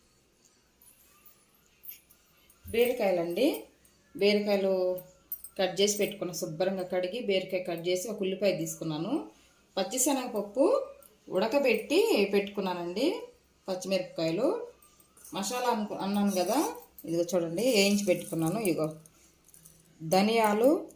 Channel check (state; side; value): identical; both; correlation 1.00